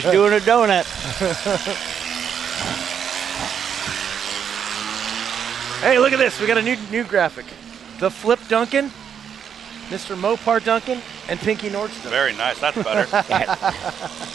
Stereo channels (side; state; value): left; quieter; 8.0 dB